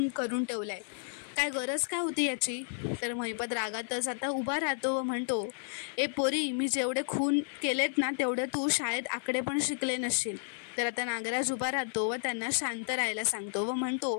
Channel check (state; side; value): silent; right; 56 dB below the other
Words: करून ठेवलाय, काय गरज काय होती याची. तर महिपत रागातच आता उभा राहतो व म्हणतो, ए पोरी, मी जेवढे खून केलेत ना तेवढे तू शाळेत आकडे पण शिकले नसशील. तर आता नागराज उभा राहतो व त्यांना शांत राहायला सांगतो व